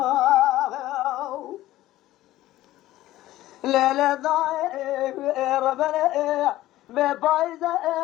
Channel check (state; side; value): quieter; right; 15.5 dB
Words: ليلة ضايع ربنا ببايزة